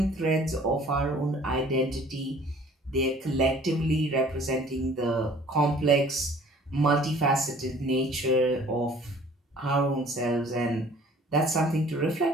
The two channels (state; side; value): normal; both; correlation 0.52